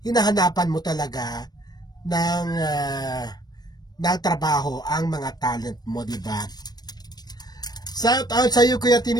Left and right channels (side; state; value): right; late; 0.19 ms